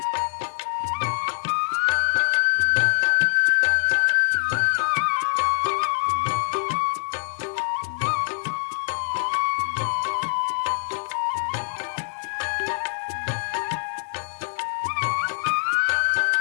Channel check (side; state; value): right; silent; digital silence